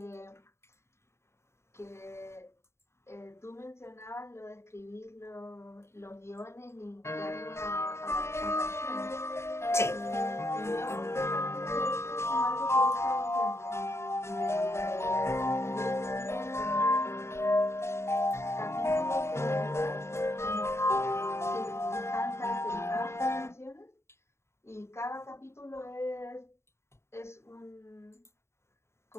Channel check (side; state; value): right; late; 0.13 ms